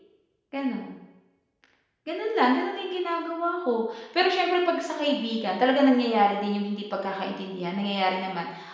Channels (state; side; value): identical; both; correlation 1.00